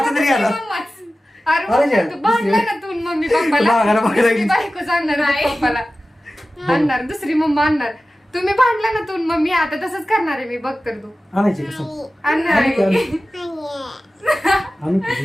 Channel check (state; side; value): normal; both; correlation 0.95